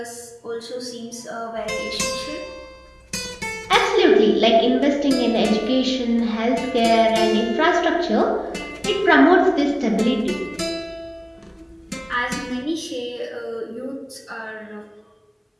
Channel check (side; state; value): both; identical; correlation 1.00